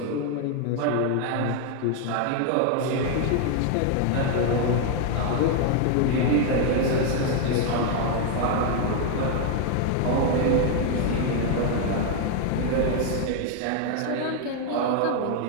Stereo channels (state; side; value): different; both; correlation 0.00